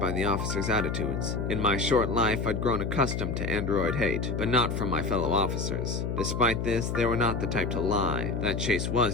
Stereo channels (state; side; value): noise; left; hum, 2 dB below the sound